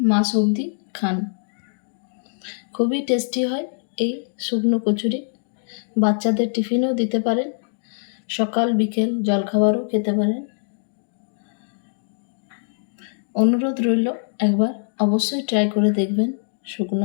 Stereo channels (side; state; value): right; silent; digital silence